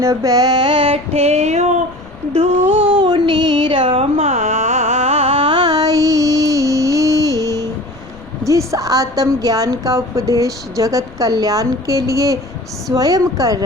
बैठे हो धूनी रमाई। जिस आत्म ज्ञान का उपदेश जगत कल्याण के लिए स्वयं कर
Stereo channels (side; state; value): left; noise; rumble, 21 dB below the sound